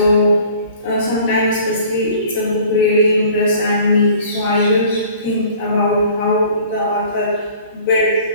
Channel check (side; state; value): both; inverted; correlation -0.49